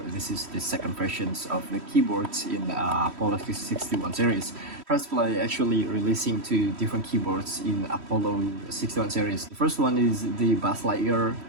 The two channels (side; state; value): left; late; 3.1 ms